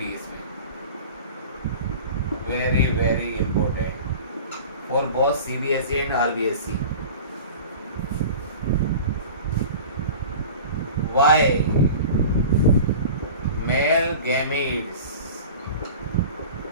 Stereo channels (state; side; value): inverted; both; correlation -0.38